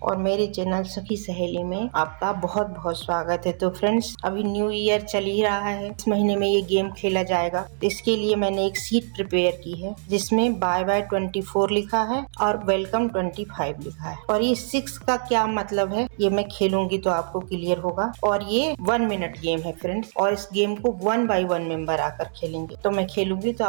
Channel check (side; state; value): left; silent; digital silence